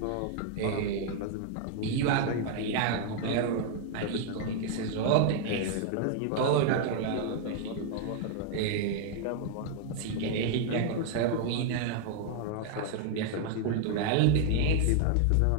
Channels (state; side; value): different; both; correlation 0.00